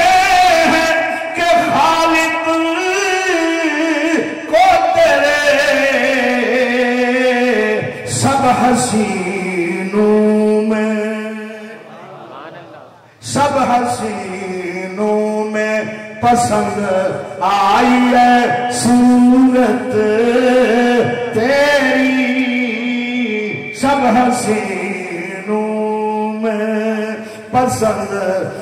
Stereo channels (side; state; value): both; identical; correlation 1.00